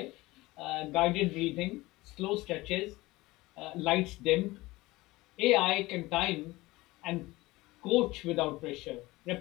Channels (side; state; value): right; quieter; 20.1 dB